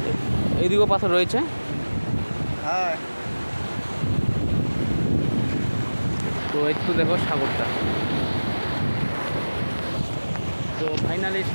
এইদিকেও পাথর রয়েছে। হ্যাঁ, তো একটু দেখো সাগরটা। তো ফাইনালি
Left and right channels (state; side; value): inverted; both; correlation -1.00